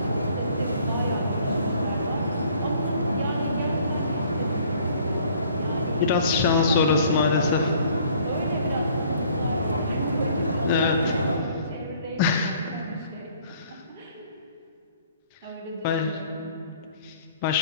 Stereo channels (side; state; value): both; inverted; correlation -0.57